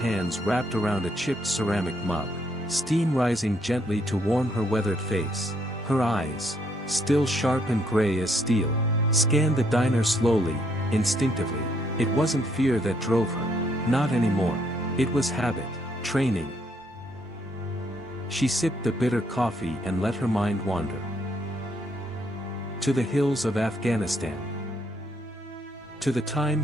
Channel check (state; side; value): normal; both; correlation 0.71